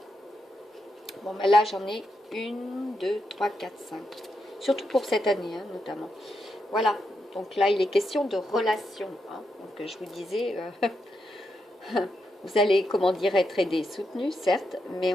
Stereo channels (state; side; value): normal; both; correlation 0.84